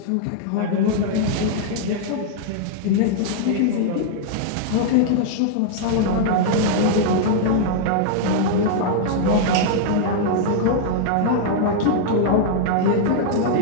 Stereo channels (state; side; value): different; both; correlation -0.01